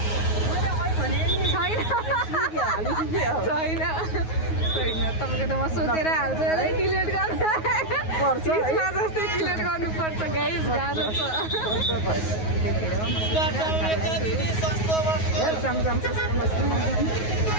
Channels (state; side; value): late; right; 9.4 ms